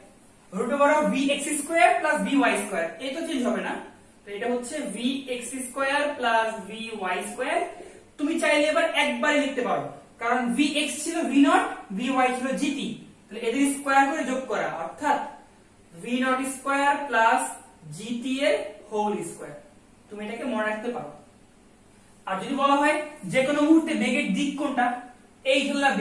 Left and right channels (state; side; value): identical; both; correlation 1.00